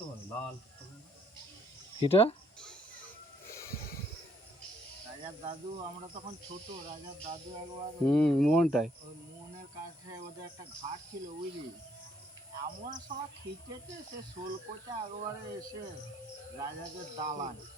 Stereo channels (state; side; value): normal; both; correlation 0.68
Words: ভালো, লাল। এটা রাজার দাদু, আমরা তখন ছোট, রাজার দাদু একবার মোহনটাই ওই মোহনের কাছে ওদের একটা ঘাট ছিল বুঝলি, এমন সময় খিচেছে সে শোল কোচা একবারে এসে রাজাদের দালান।